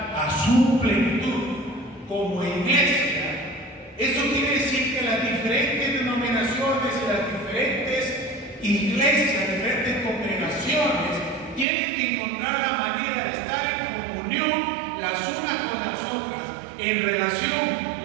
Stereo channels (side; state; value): left; drops out; at 11.7 s